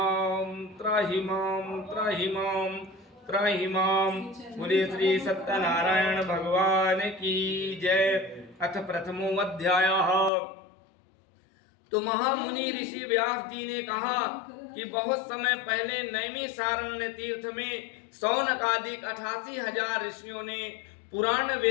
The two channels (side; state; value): right; drops out; at 10.3 s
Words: त्राहि मां त्राहि मां त्राहि मां। बोलिए श्री सत्यनारायण भगवान की जय। अथ प्रथमो अध्यायः। तो महामुनि ऋषि व्यास जी ने कहा कि बहुत समय पहले नैमिषारण्य तीर्थ में शौनकादिक 88,000 ऋषियों ने पुराण